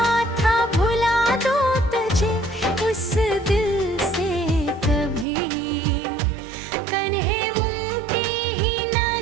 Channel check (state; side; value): drops out; left; at 5.2 s